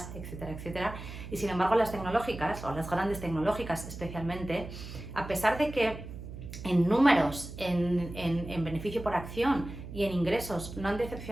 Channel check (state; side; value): noise; right; hum, 11 dB below the sound